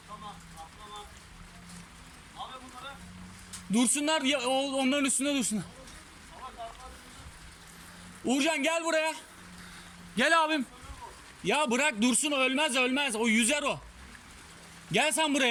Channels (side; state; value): both; identical; correlation 1.00